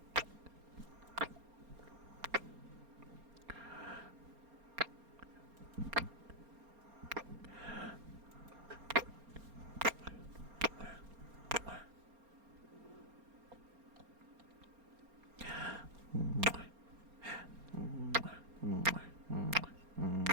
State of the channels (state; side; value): late; left; 4.3 ms